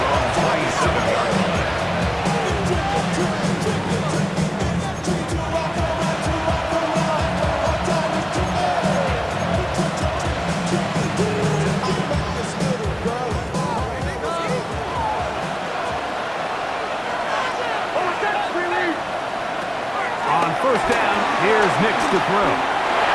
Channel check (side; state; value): both; identical; correlation 1.00